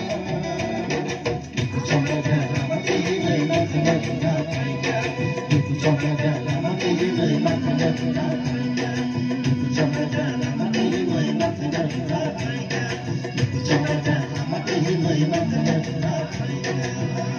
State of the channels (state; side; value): identical; both; correlation 1.00